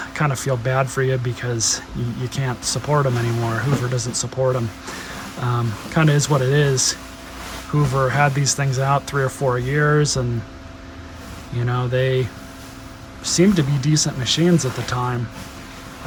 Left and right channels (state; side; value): identical; both; correlation 1.00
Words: I kind of feel bad for you because you can't support them anymore. Hoover doesn't support them. Kind of is what it is. Hoover had these things out 3 or 4 years, and you know, they seemed to be decent machines at the time.